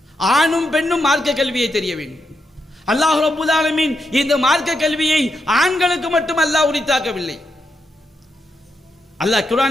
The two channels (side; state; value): both; normal; correlation 0.83